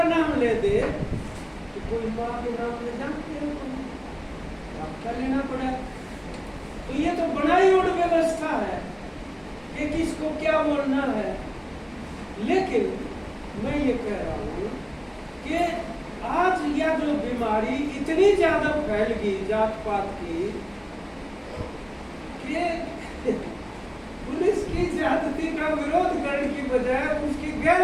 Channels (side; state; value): both; identical; correlation 1.00